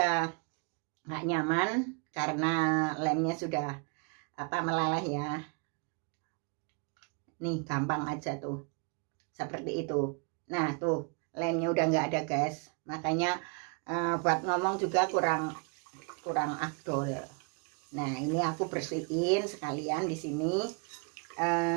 nggak nyaman karena lemnya sudah melaleh ya. Nih gampang aja tuh seperti itu. Nah tuh lemnya udah nggak ada guys, makanya buat ngomong juga kurang afdol. Nah, ini aku bersihin sekalian di sini.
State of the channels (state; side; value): quieter; left; 35.7 dB